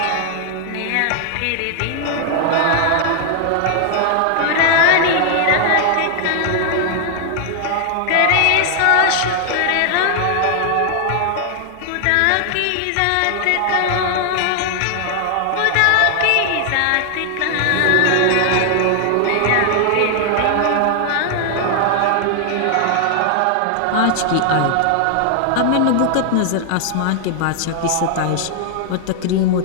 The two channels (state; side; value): different; both; correlation 0.00